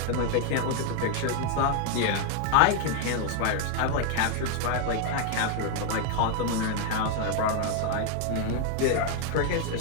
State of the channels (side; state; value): both; different; correlation 0.00